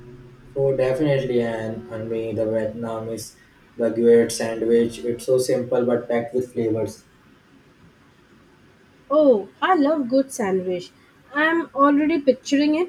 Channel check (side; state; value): both; identical; correlation 1.00